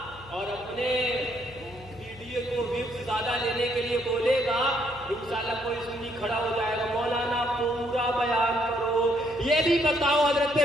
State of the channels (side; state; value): left; noise; hum, 20 dB below the sound